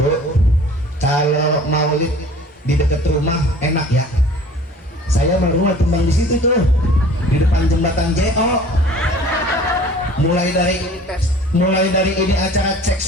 kalau maulid di dekat rumah enak ya. Saya rumah tumbang di situ tuh, di depan jembatan JO. Mulai dari ini acara cek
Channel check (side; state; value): both; normal; correlation 0.47